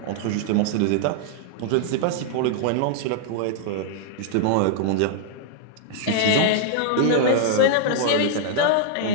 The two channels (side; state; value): both; different; correlation -0.01